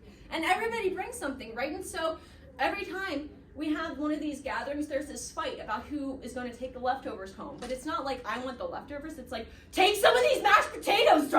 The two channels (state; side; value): identical; both; correlation 1.00